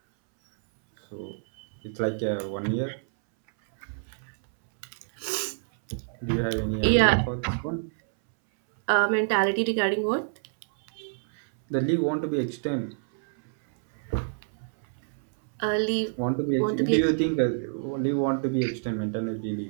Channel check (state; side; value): silent; left; 60 dB below the other